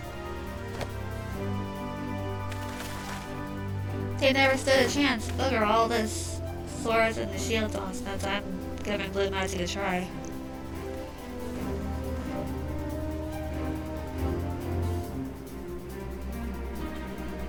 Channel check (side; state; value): both; identical; correlation 1.00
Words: They never stood a chance. Look at all this swords and the shields on since I'm giving blue magic a try.